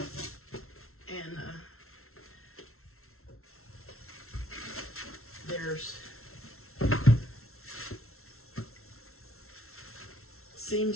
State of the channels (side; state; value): right; late; 0.62 ms